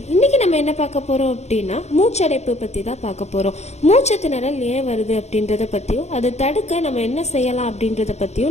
இன்னைக்கு நம்ம என்ன பார்க்க போறோம் அப்படின்னா மூச்சடைப்பு பத்தி தான் பார்க்க போறோம். மூச்சு திணறல் ஏன் வருது அப்படின்றத பத்தியும் அதை தடுக்க நம்ம என்ன செய்யலாம் அப்படின்றத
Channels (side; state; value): right; late; 0.32 ms